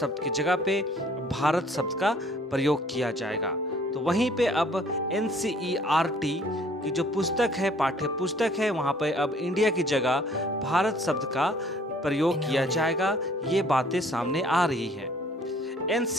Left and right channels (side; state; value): both; normal; correlation 0.57